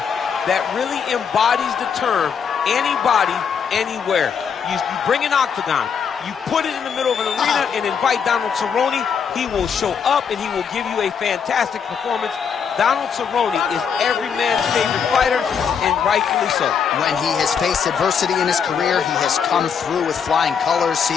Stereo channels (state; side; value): quieter; right; 6.9 dB